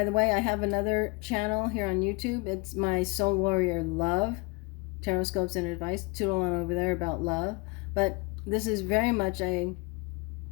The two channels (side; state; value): right; quieter; 27.8 dB